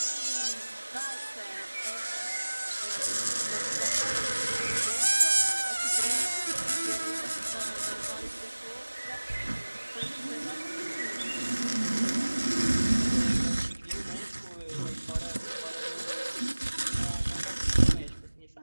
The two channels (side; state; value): both; inverted; correlation -1.00